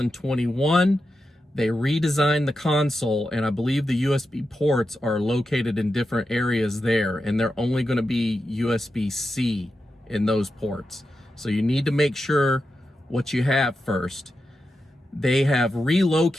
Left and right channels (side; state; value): both; normal; correlation 0.89